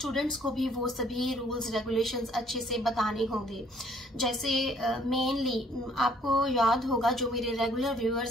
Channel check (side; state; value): both; normal; correlation 0.61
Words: को भी वो सभी रूल्स रेगुलेशंस अच्छे से बताने होंगे। जैसे मेनली आपको याद होगा, जो मेरे रेगुलर